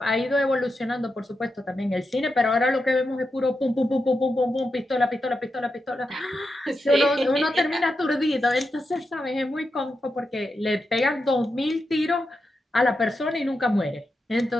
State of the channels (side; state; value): both; normal; correlation 0.87